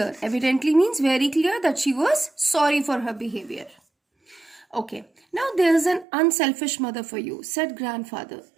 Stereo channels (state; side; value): drops out; left; at 6.1 s